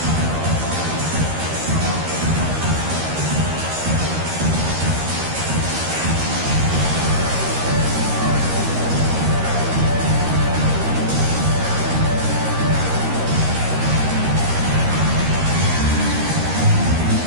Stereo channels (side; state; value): left; late; 13 ms